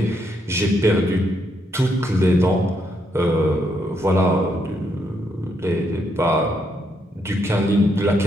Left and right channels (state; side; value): normal; both; correlation 0.77